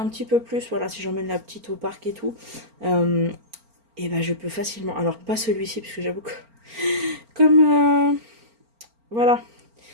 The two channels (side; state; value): left; late; 4.4 ms